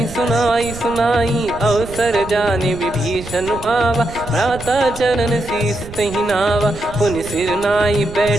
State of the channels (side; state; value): right; noise; rumble, 14 dB below the sound